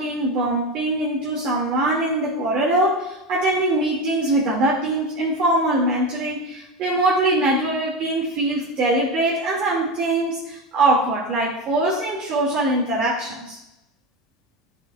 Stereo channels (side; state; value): both; normal; correlation 0.19